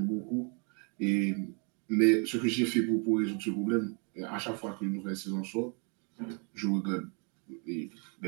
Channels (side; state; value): left; quieter; 36.7 dB